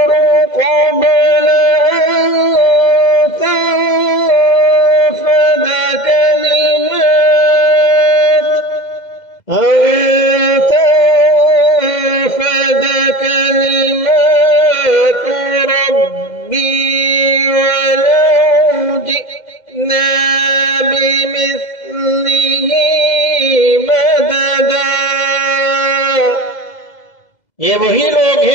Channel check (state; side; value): late; right; 2.0 ms